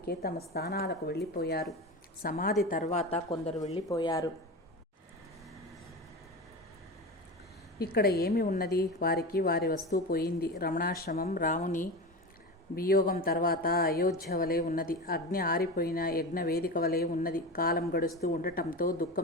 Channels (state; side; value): normal; both; correlation 0.26